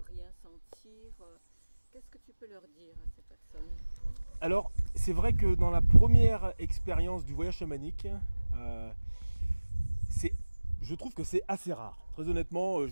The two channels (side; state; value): both; inverted; correlation -1.00